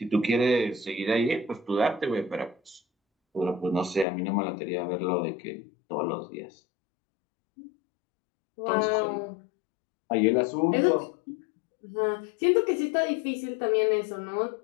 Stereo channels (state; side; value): drops out; right; at 4.0 s